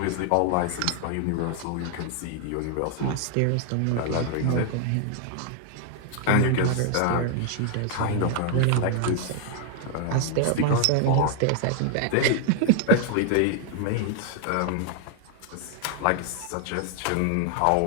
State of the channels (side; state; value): both; different; correlation 0.00